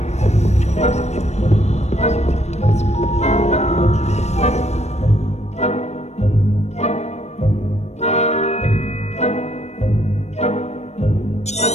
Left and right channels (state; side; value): late; right; 0.32 ms